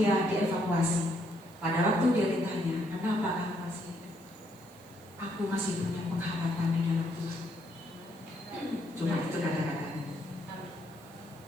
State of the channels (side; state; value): right; noise; hiss, 25 dB below the sound